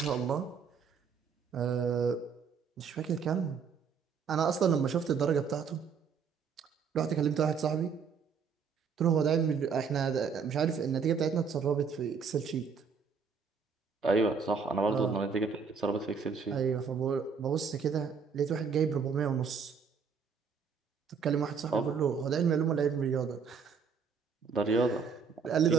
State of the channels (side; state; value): left; quieter; 6.0 dB